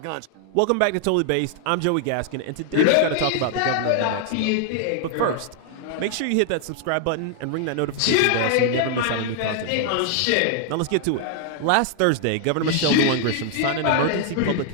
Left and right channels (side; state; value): both; different; correlation 0.00